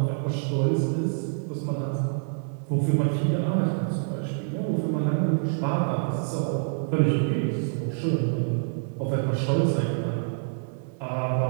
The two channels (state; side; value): silent; left; digital silence